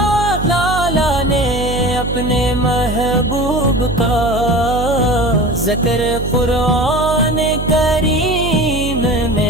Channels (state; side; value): noise; right; hum, 6 dB below the sound